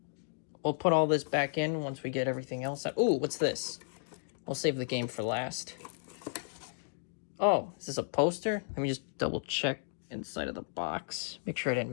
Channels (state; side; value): silent; right; digital silence